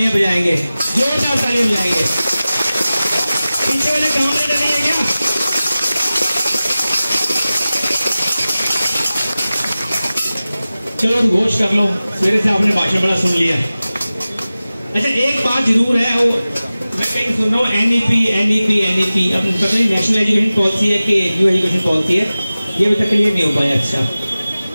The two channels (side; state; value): both; inverted; correlation -0.96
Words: बजाएंगे, जोरदार तालियां बजाएंगे। पीछे वाले कामरेड नहीं है क्या? चलो घोष कर लो, मेरे से आपने भाषण बड़ा सुन लिया। अच्छा एक बात जरूर है, वो मैं कहीं सुन रहा हूँ एनईपी अब पता नहीं नेशनल एजुकेशन पॉलिसी है कि न्यू एजुकेशन पॉलिसी है, ये अभी तक क्लियर नहीं हो पाया। अच्छा